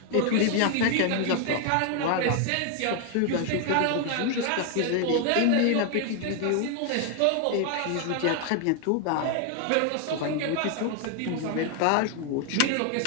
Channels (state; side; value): different; both; correlation 0.00